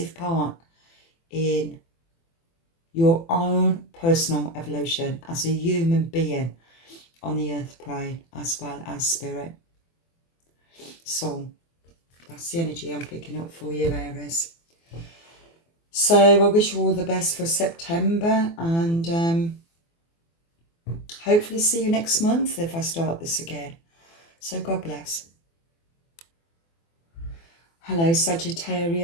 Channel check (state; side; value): late; right; 24 ms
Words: part in your own personal evolution as a human being on the earth plane, as well as spirit. So that's the energy I'm picking up for you, Aries. So I wish you all the best for September, and hopefully see you next month if I start this again. So God bless. Hello